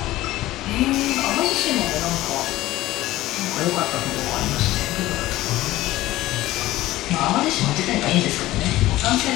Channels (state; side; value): quieter; right; 16.4 dB